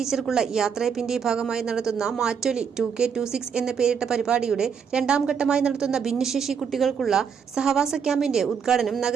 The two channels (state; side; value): quieter; left; 6.8 dB